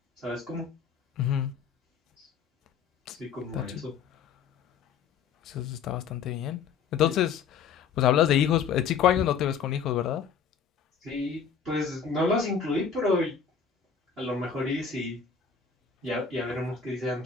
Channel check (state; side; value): quieter; right; 6.6 dB